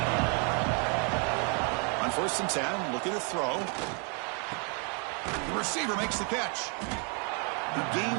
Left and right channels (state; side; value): quieter; left; 36.7 dB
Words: On 1st and 10, looking to throw. The receiver makes the catch. He